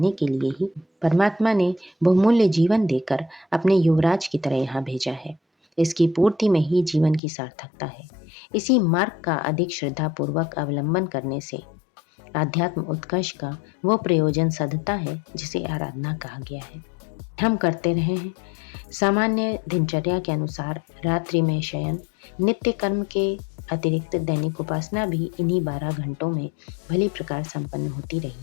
के लिए ही परमात्मा ने बहुमूल्य जीवन देकर अपने युवराज की तरह यहाँ भेजा है। इसकी पूर्ति में ही जीवन की सार्थकता है। इसी मार्ग का अधिक श्रद्धापूर्वक अवलंबन करने से आध्यात्म उत्कर्ष का वो प्रयोजन सधता है जिसे आराधना कहा गया है। हम करते रहे हैं। सामान्य दिनचर्या के अनुसार रात्रि में शयन, नित्य कर्म के अतिरिक्त दैनिक उपासना भी इन्हीं 12 घंटों में भली प्रकार संपन्न होती रही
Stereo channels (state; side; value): drops out; right; at 7.2 s